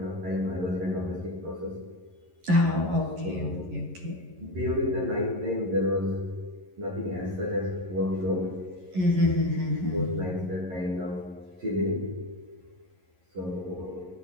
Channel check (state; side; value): late; left; 11 ms